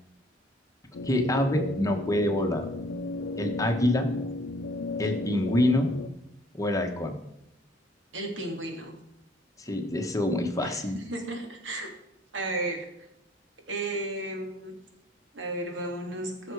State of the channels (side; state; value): both; normal; correlation 0.59